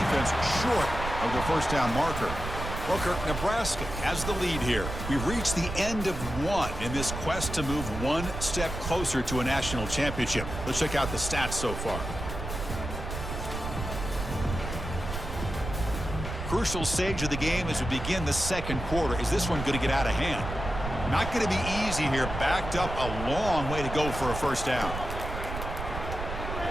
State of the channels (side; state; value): right; noise; rumble, 6 dB below the sound